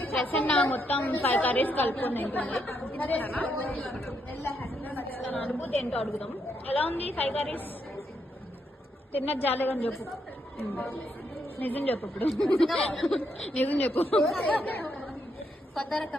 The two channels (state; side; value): normal; both; correlation 0.77